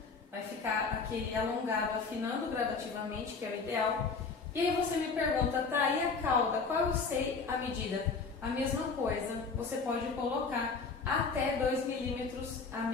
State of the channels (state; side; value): quieter; right; 4.8 dB